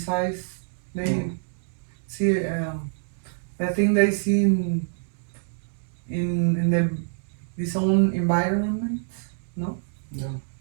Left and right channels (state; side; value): silent; left; digital silence